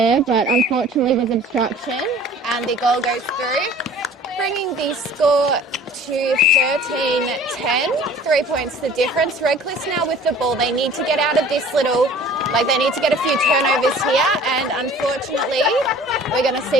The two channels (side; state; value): both; normal; correlation 0.47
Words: but unfortunately was obstruction, and the goal goes through, bringing the score to 13-10, 3 points the difference. Redcliffe now with the ball. They need to get out of this little, they need to get a few turnovers here, and unfortunately we're going to